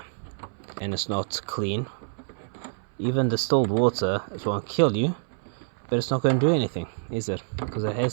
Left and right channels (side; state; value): left; silent; 60 dB below the other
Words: and it's not clean. Even distilled water, it won't kill you, but it's not going to do anything, is it? Because it